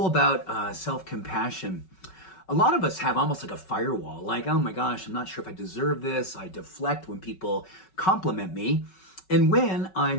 about self-compassion. A lot of us have almost like a firewall, like, oh my gosh, I'm not sure if I deserve this. I deflect when people compliment me. And when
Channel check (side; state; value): right; late; 5.3 ms